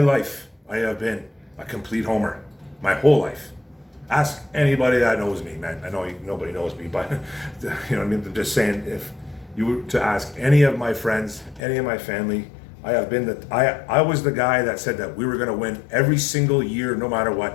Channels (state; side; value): drops out; right; at 11.6 s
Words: I have been a complete homer. My whole life. Ask anybody that knows me, man. I know nobody knows me, but you know what I mean? I'm just saying, if you were to ask any of my friends, any of my family, I was the guy that said that we were going to win every single year, no matter